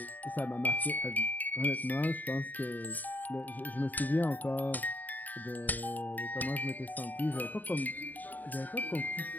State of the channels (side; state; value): right; late; 0.084 ms